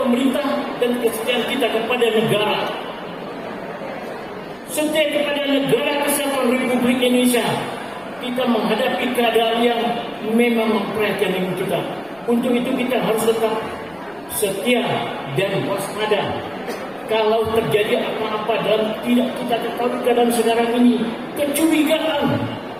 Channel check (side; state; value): left; noise; rumble, 30 dB below the sound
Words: dan kesetiaan kita kepada negara. Setia kepada negara kesatuan Republik Indonesia, kita menghadapi keadaan yang memang memprihatinkan kita. Untuk itu kita harus tetap setia dan waspada. Kalau terjadi apa-apa dalam tidak kita ketahui keadaan sekarang ini, kecurigaan